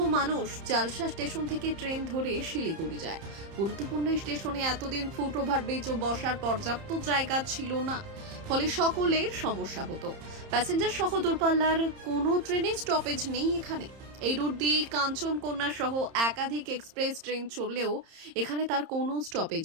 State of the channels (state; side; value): late; left; 30 ms